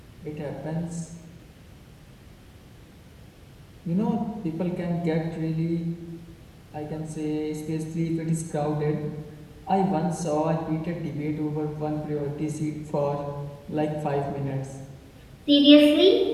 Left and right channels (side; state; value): both; identical; correlation 1.00